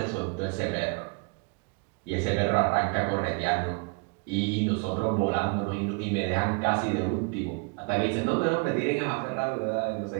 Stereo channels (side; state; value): left; quieter; 33.3 dB